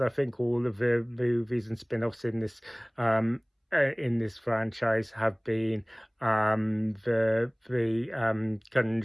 think all of the movies and spin-offs in this franchise have been. The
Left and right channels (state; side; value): identical; both; correlation 1.00